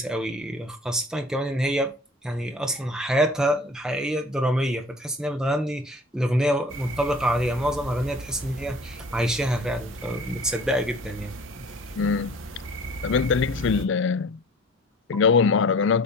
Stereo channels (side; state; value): both; normal; correlation 0.46